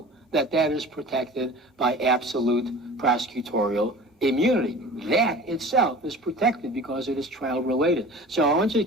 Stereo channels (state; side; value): normal; both; correlation 0.40